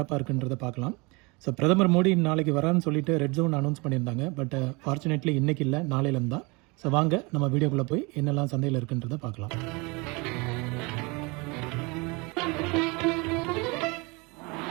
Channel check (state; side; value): quieter; left; 27.5 dB